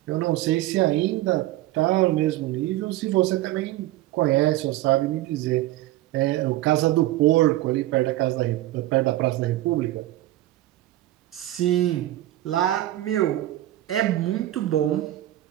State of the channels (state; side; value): quieter; left; 15.3 dB